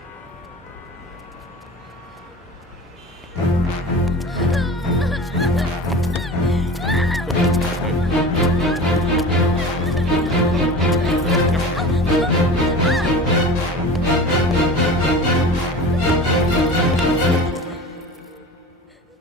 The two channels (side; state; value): both; normal; correlation 0.35